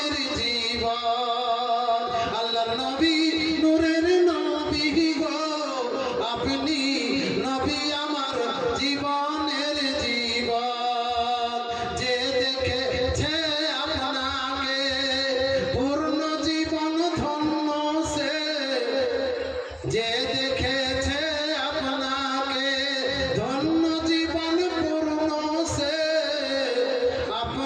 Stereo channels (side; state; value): both; identical; correlation 1.00